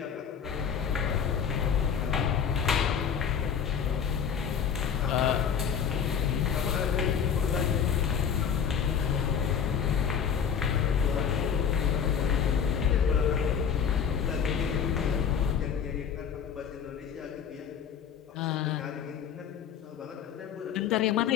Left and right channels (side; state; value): right; quieter; 7.5 dB